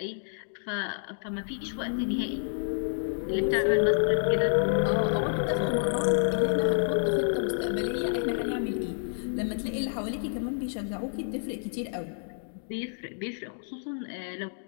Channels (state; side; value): silent; right; digital silence